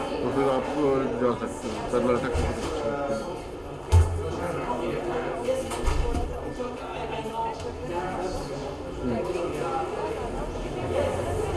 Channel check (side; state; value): both; identical; correlation 1.00